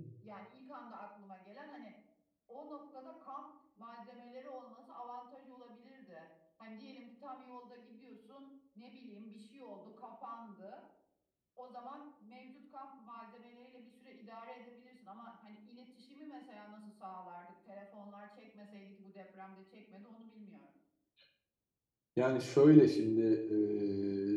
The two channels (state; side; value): identical; both; correlation 1.00